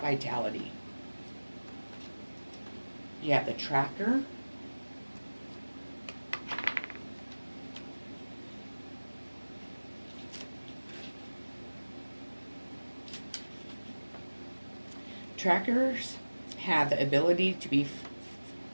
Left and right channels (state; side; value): inverted; both; correlation -1.00